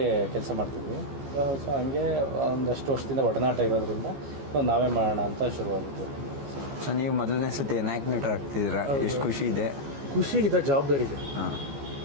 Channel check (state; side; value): late; left; 14 ms